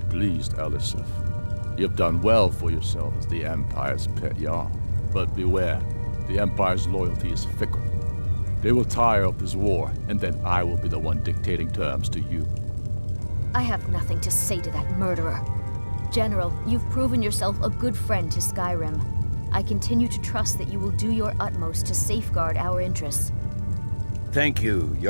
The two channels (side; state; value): both; inverted; correlation -1.00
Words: Elisif. You've done well for yourself as the Empire's pet Jarl. But beware, the Empire's loyalty is fickle. They will tire of this war, and then I will be the one dictating terms to you. I have nothing to say to that murderer. General, you've proven yourself a good friend to Skyrim. I continue to trust that you will do your utmost to safeguard our interests. Thank you,